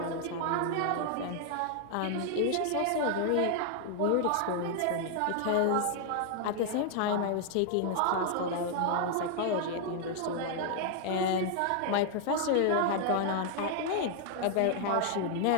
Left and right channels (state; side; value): different; both; correlation 0.00